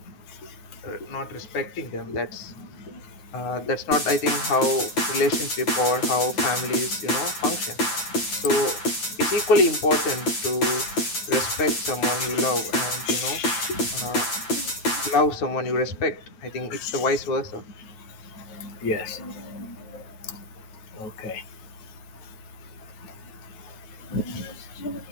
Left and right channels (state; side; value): late; right; 9.0 ms